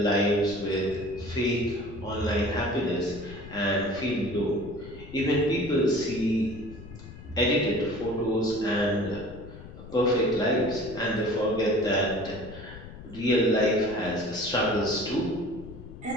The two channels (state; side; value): noise; left; rumble, 15 dB below the sound